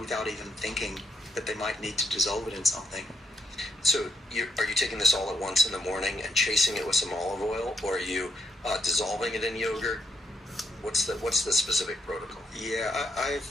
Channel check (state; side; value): normal; both; correlation 0.76